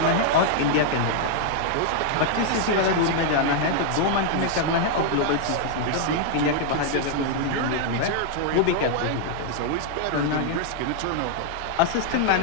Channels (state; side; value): different; both; correlation 0.00